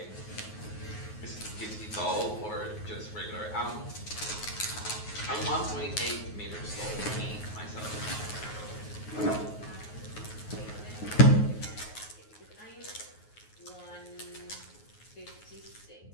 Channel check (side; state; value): right; late; 9.4 ms